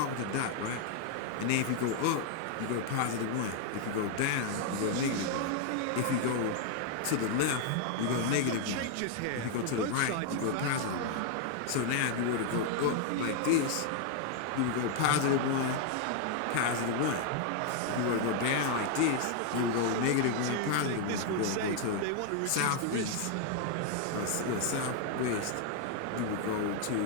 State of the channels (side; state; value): both; different; correlation 0.00